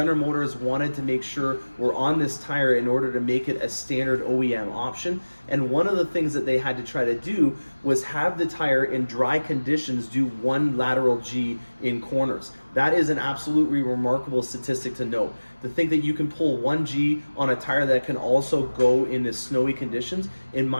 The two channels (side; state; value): both; inverted; correlation -1.00